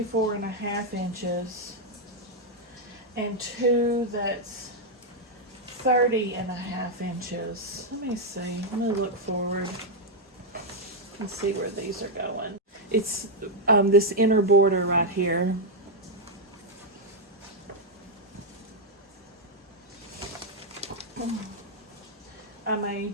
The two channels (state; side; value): normal; both; correlation -0.01